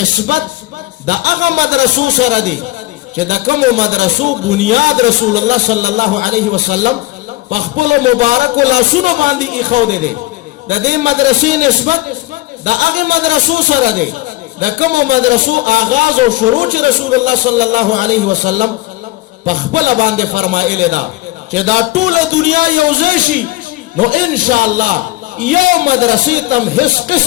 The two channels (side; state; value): right; quieter; 19.5 dB